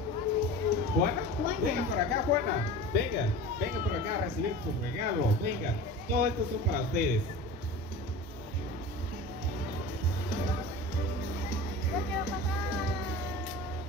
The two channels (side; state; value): both; normal; correlation 0.35